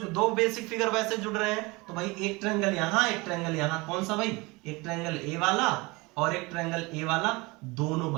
दो बेसिक फिगर वैसे जुड़ रहे हैं, तो भाई एक ट्रायंगल यहां एक ट्रायंगल यहां, कौन सा भाई, एक ट्रायंगल ए वाला और एक ट्रायंगल ए वाला, दोनों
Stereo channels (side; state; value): left; quieter; 24.4 dB